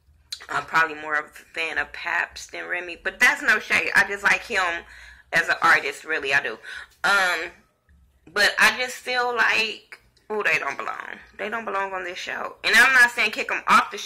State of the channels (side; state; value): both; identical; correlation 1.00